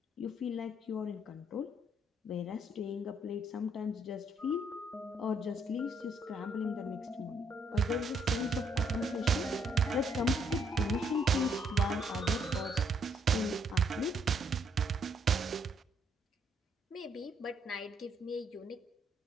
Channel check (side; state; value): both; normal; correlation 0.70